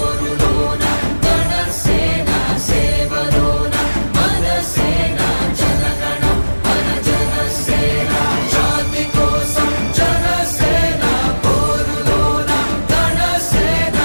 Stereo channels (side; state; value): both; inverted; correlation -1.00